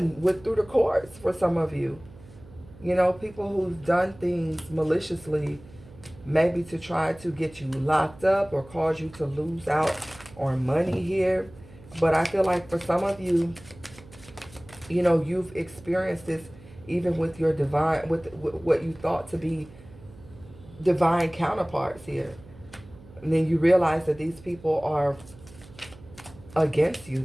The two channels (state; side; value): noise; right; hum, 21 dB below the sound